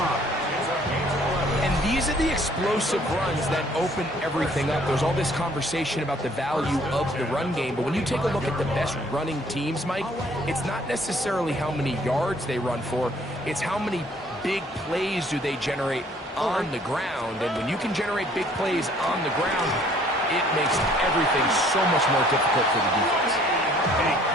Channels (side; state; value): both; normal; correlation 0.59